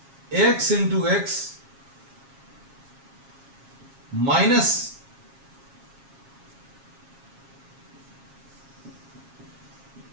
x into x minus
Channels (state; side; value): late; left; 7.4 ms